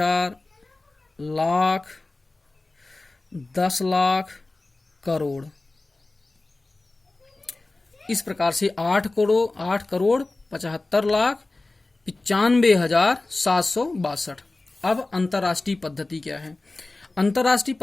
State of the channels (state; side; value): quieter; right; 3.1 dB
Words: लाख, 10 लाख, करोड़। इस प्रकार से 8 करोड़ 75 लाख 95,762। अब अंतर्राष्ट्रीय पद्धति क्या है। अंतर्राष्ट्रीय